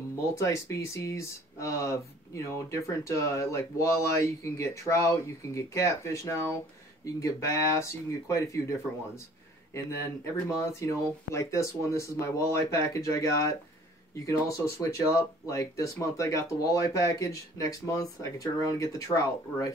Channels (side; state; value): both; normal; correlation 0.53